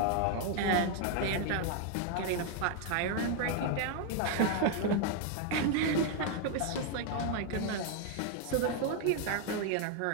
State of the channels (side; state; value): both; different; correlation 0.00